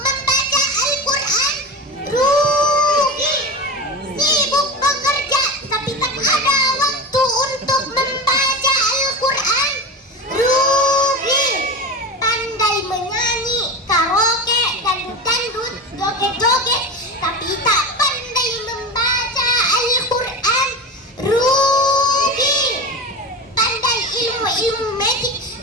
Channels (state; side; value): normal; both; correlation 0.26